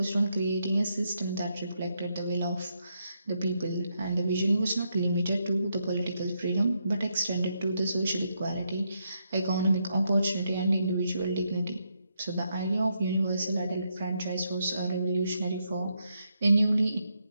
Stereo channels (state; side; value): inverted; both; correlation -0.80